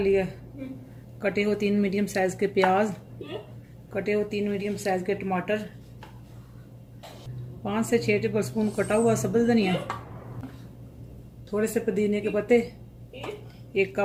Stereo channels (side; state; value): both; identical; correlation 1.00